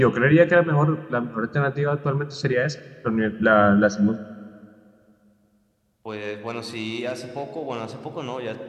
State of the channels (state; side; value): identical; both; correlation 1.00